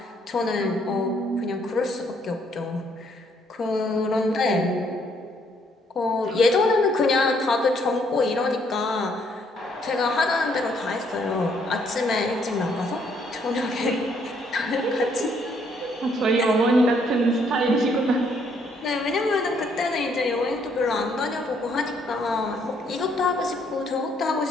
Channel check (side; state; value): both; normal; correlation 0.69